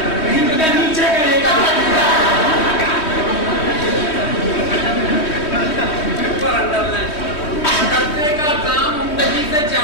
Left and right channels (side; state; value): right; late; 3.2 ms